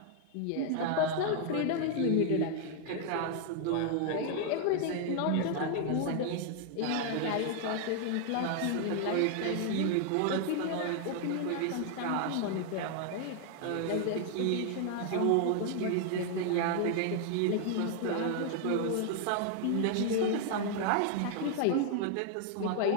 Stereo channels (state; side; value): different; both; correlation 0.00